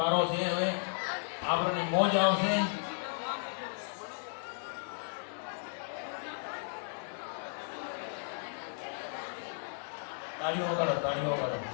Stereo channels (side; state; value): right; silent; 55 dB below the other